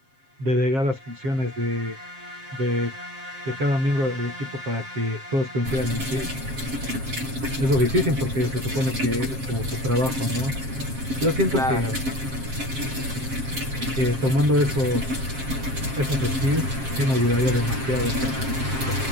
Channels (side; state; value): left; late; 7.5 ms